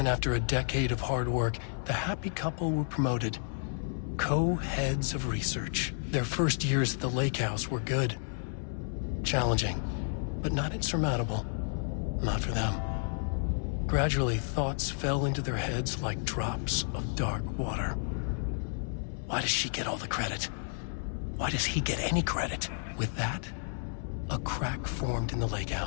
after a decade of hard work, the happy couple were promoted. Co-heads of research. Their first years at the lake house were good. Challenging, but not insurmountable. Not for them. Gradually, thoughts fell into their heads like drops of dark water. Why does she get all the credit? Why does he get any credit? With that, a crack formed in the lake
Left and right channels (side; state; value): right; silent; digital silence